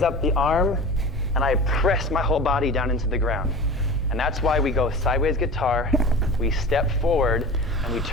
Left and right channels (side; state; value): both; normal; correlation 0.35